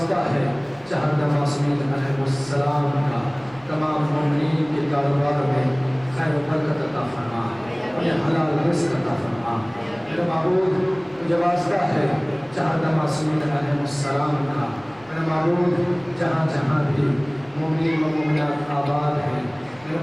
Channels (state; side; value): noise; left; rumble, 27 dB below the sound